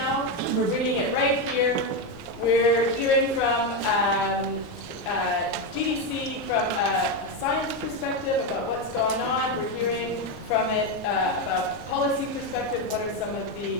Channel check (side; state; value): left; noise; rumble, 22 dB below the sound